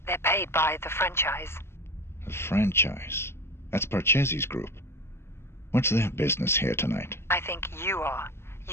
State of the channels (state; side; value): late; right; 0.12 ms